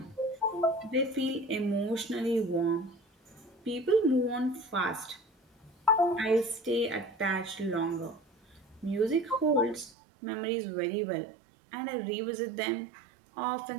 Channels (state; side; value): drops out; left; at 9.9 s